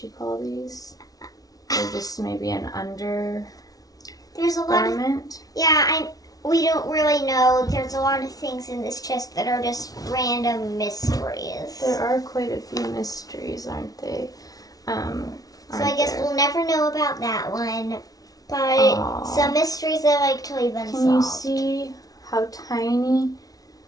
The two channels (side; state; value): right; late; 0.18 ms